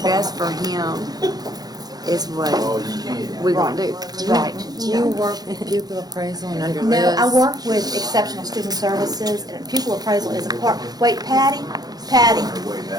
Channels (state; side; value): late; left; 0.19 ms